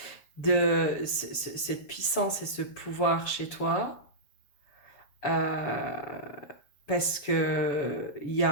De cette puissance et ce pouvoir chez toi. Euh, parce que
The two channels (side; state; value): right; late; 6.9 ms